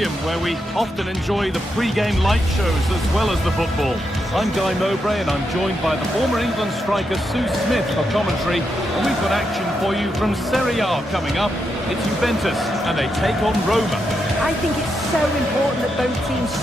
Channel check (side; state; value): both; normal; correlation 0.83